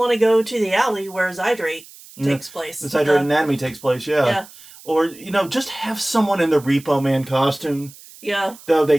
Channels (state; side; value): noise; right; hiss, 20 dB below the sound